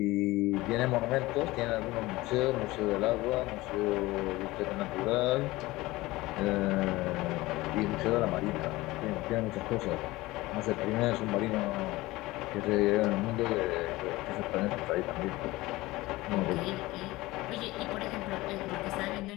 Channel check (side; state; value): right; quieter; 19.5 dB